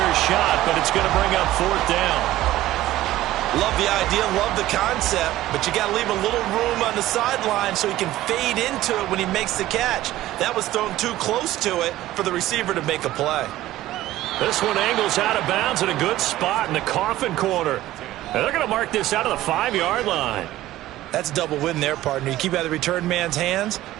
shot, but it's going to bring up 4th down. Love the idea, love the concept, but you got to leave a little room on the sideline so he can fade into it when he makes the catch. That was thrown too close to it for the receiver to make a play. This one angles out of bounds in a good spot in the coffin corner. And they're going to mark this out of the 5-yard line. That's a double win there, partner. You keep out of the return man's hands,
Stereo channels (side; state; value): left; quieter; 15.2 dB